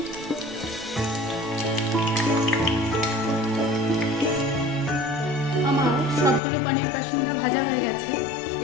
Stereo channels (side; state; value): right; drops out; at 6.4 s